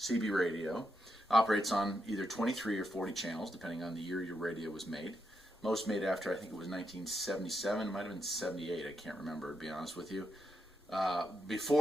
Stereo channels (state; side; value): noise; left; rumble, 29 dB below the sound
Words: radio, operates on either 23 or 40 channels, depending on the year your radio was made. Most made after, I think it was 1977, it might have been 78, I can't remember, to be honest with you.